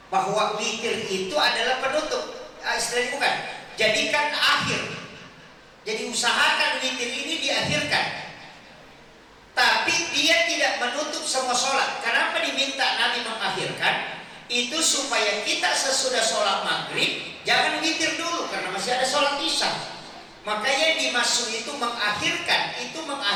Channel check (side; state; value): both; identical; correlation 1.00